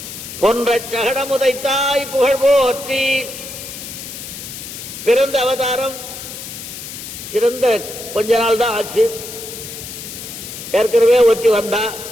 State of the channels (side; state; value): left; noise; hiss, 10 dB below the sound